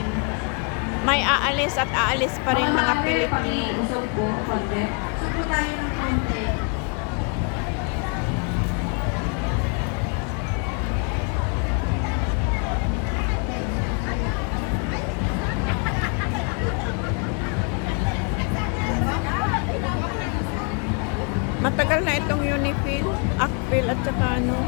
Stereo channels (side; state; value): right; quieter; 37.4 dB